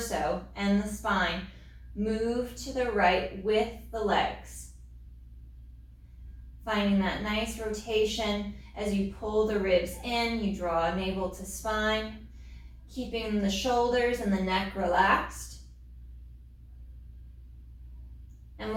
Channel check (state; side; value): identical; both; correlation 1.00